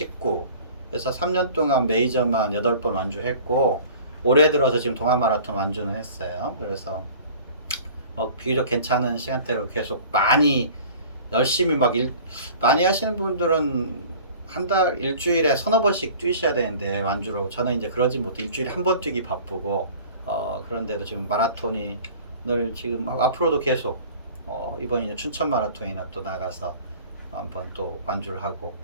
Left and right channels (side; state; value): both; inverted; correlation -0.45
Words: 그래서 3년 동안 메이저만 8번 완주했고 올해 들어서 지금 동아 마라톤 완주는 했어요. 그래서 비교적 괜찮은 시간대로 계속 많이 열심히 많이 하시는 분들은 한 달 일주일에 서너 번씩 뛰셔야 되는데 완주로 저는 이제 그러지 못해 일주일에 한 번 뛰기 바쁘고 그런데도 지금 마라톤이 늘 지금 앞으로도 계속 이번 이제 춘천 마라톤이나 또 나가서 한번 또 완주를 하고